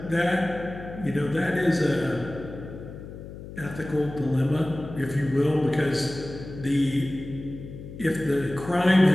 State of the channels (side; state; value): left; noise; hum, 13 dB below the sound